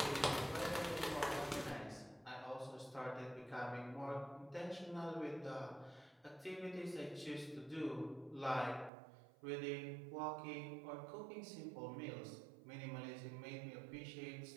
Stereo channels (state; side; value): drops out; left; at 8.9 s